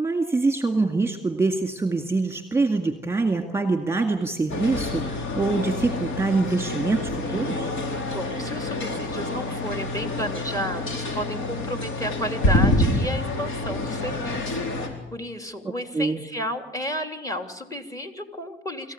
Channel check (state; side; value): normal; both; correlation 0.57